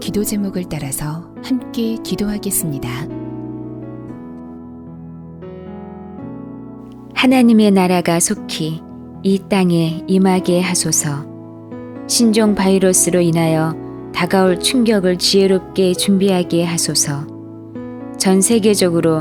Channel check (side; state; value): both; identical; correlation 1.00